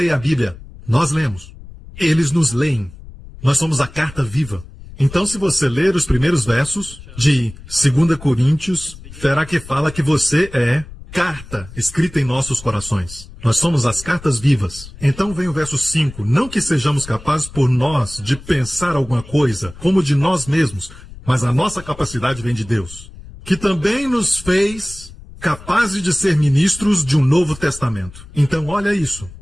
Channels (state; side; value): noise; left; rumble, 17 dB below the sound